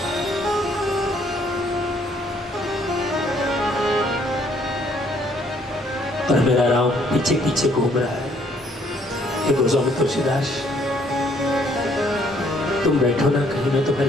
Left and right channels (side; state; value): both; normal; correlation 0.65